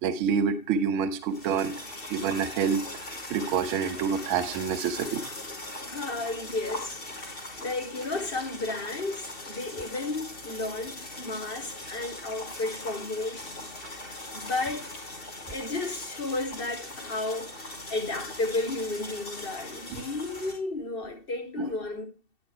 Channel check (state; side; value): late; right; 2.7 ms